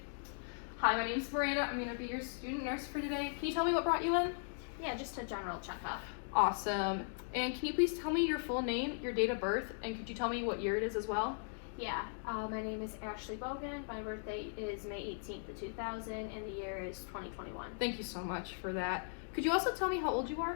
Hi, my name's Miranda. I'm gonna be your student nurse for today. Can you tell me what brought you in? Yeah, just a general checkup. Awesome. And can you please tell me your full name, your date of birth, and could you tell me what year it is as well? Yeah, my name is Ashley Bogan. My birthday is May 18th of 2000, and the year is 2021. Thank you so much for that. Could you also tell me how old you are?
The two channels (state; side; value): silent; right; digital silence